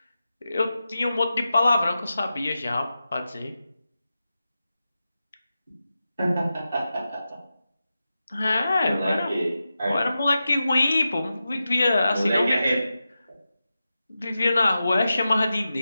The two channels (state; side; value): inverted; both; correlation -0.92